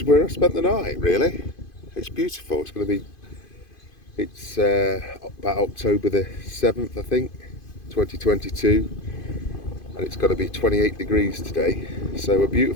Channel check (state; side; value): late; right; 2.5 ms